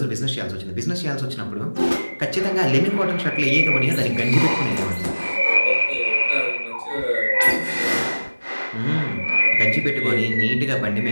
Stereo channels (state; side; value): inverted; both; correlation -1.00